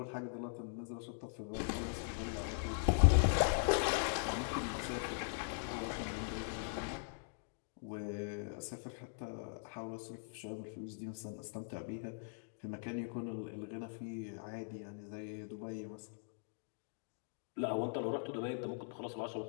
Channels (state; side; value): silent; right; digital silence